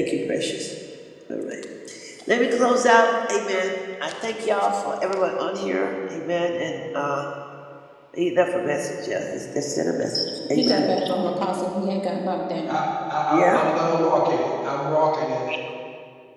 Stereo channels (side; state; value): both; identical; correlation 1.00